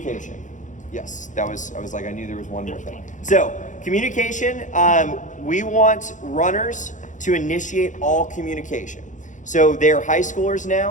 Yes, I knew there was one more thing. So, communication, we want runners to initiate all communication. So they're high schoolers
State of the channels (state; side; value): late; right; 0.36 ms